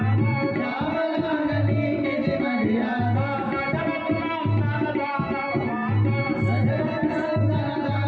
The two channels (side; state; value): both; identical; correlation 1.00